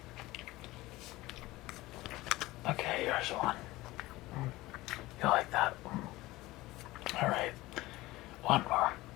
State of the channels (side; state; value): right; quieter; 18.9 dB